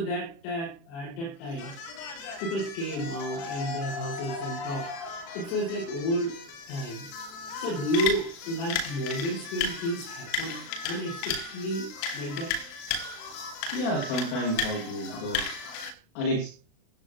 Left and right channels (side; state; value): right; late; 36 ms